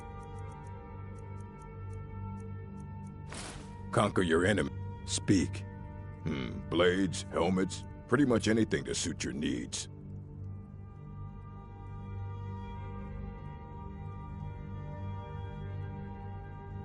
Conquer your enemy. Speak. Blades, helmets, pretty much anything to suit your needs.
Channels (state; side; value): identical; both; correlation 1.00